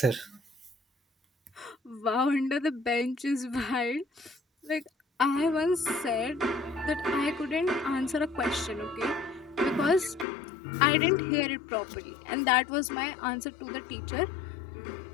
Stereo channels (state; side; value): drops out; right; at 10.2 s